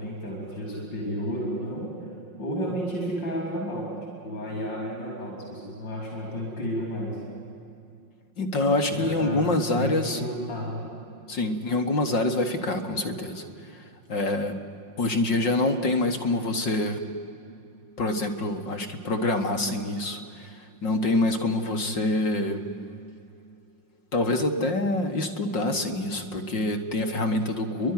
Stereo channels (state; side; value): late; right; 5.6 ms